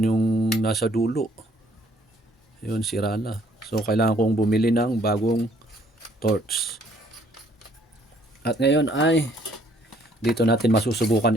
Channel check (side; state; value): both; normal; correlation 0.63